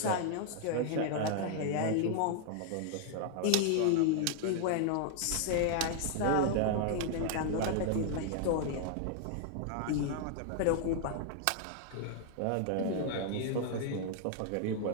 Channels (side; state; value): both; different; correlation 0.00